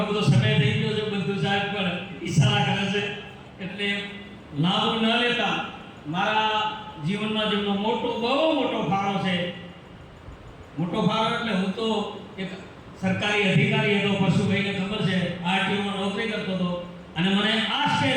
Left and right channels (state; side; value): identical; both; correlation 1.00